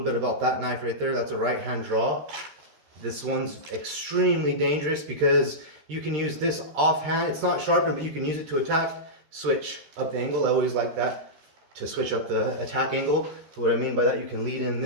bit about that knife right there. That's a right-hand draw. This one's extremely dangerous because you can use this offhand. It's not sharpened, but you can use it to attack, switch up the angle. I always like that, to switch up the attack angle. So what I mean by that, you can lead in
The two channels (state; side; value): late; left; 13 ms